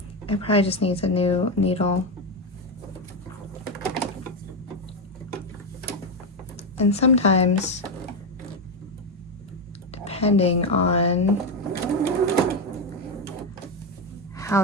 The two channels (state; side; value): normal; both; correlation 0.10